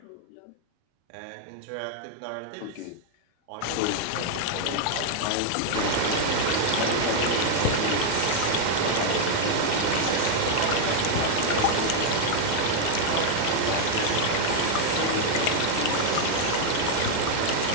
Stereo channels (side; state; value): both; different; correlation 0.00